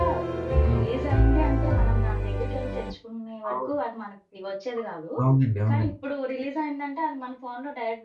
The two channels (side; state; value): both; identical; correlation 1.00